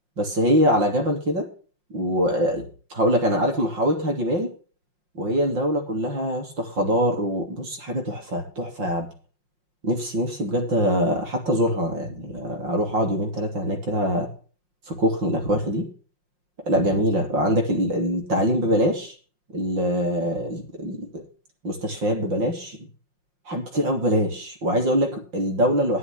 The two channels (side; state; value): left; late; 5.6 ms